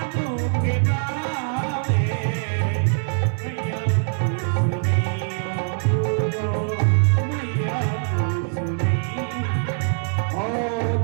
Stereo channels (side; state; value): left; silent; digital silence